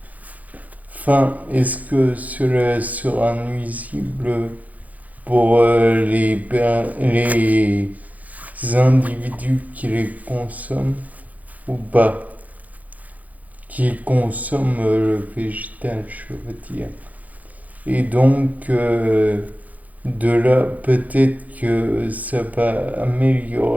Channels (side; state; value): left; late; 0.077 ms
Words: fins, est-ce que cela sera nuisible pour les individus qui les consomment ou pas, qui consomment le végétal, je veux dire. Et donc, de là, peut-être que ça va